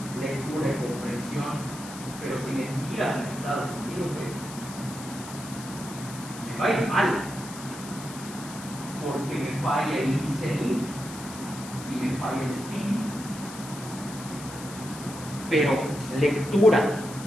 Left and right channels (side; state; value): left; noise; hiss, 13 dB below the sound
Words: lectura y comprensión, pero si me tiras en Estados Unidos, me va a ir mal, porque me falla el listening y me falla el speaking. Pero lectura